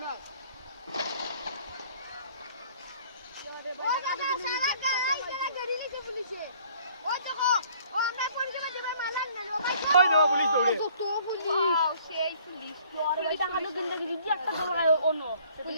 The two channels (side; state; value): both; inverted; correlation -0.57